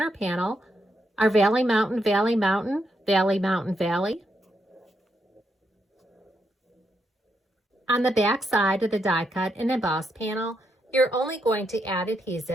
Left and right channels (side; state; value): both; normal; correlation 0.81